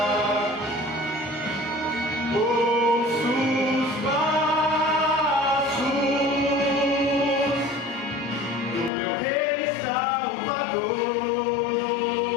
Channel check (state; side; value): drops out; right; at 8.9 s